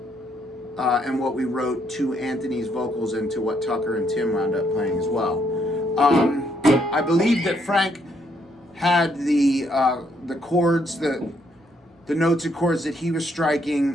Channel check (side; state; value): both; normal; correlation 0.73